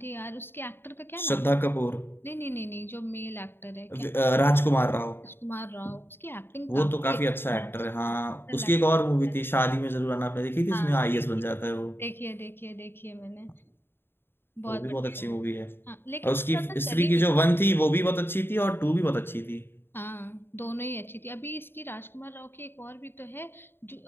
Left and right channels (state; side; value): late; right; 0.11 ms